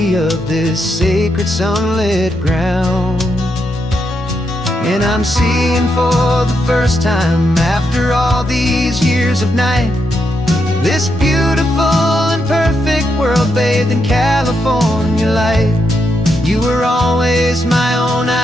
of this sacred sunlit ground. And I'm seeing for the first time, after all these years of night, this beautiful and perfect world bathed in California light. You were always my own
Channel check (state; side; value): normal; both; correlation 0.81